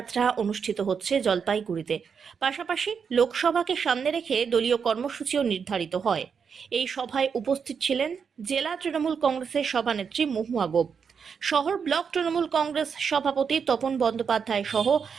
অনুষ্ঠিত হচ্ছে জলপাইগুড়িতে। পাশাপাশি লোকসভাকে সামনে রেখে দলীয় কর্মসূচিও নির্ধারিত হয়। এই সভায় উপস্থিত ছিলেন জেলা তৃণমূল কংগ্রেসের সভানেত্রী মহুয়া গোপ, শহর ব্লক তৃণমূল কংগ্রেস সভাপতি তপন বন্দ্যোপাধ্যায় সহ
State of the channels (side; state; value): left; quieter; 6.4 dB